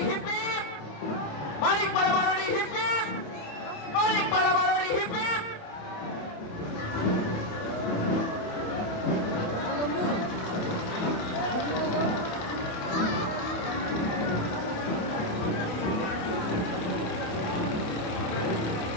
হিপ হিপ, মানিকপাড়া বারোয়ারি হিপ হিপ, মানিকপাড়া বারোয়ারি হিপ হিপ।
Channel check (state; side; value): late; right; 28 ms